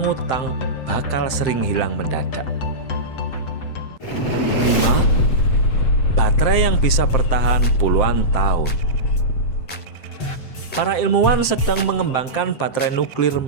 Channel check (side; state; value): right; late; 7.7 ms